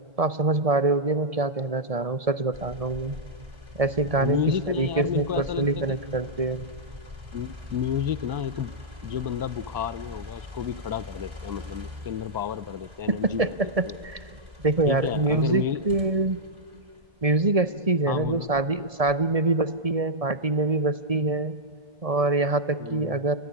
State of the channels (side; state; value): left; late; 1.7 ms